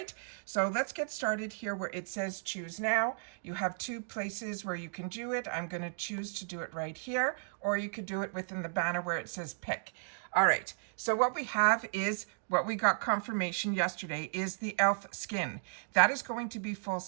so let's get started here where it says choose now. You have two places where you can do it. I'm going to choose to do it right here, or you could do it within the banner where it says pick. All right, so what we have is what we got confirmation yesterday is the elf skin. That is going to be full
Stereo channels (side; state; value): left; silent; digital silence